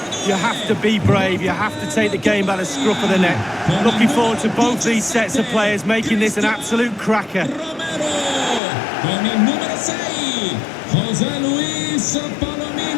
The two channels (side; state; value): right; drops out; at 8.6 s